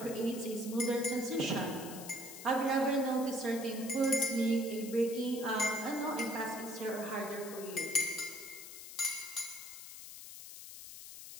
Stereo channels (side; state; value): left; noise; hiss, 12 dB below the sound